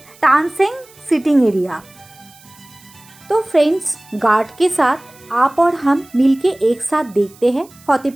Tansen sitting area. तो फ्रेंड्स, गार्ड के साथ आप और हम मिलके एक साथ देखते हैं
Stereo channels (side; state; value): right; noise; hiss, 25 dB below the sound